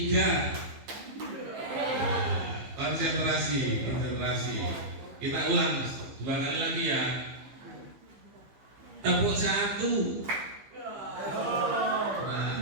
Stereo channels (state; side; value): late; left; 15 ms